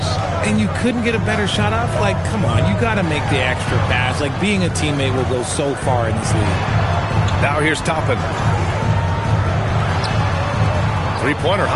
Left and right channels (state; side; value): identical; both; correlation 1.00